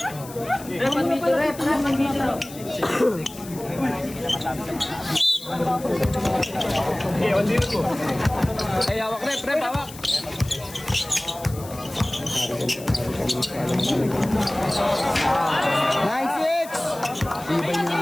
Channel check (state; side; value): noise; left; hiss, 16 dB below the sound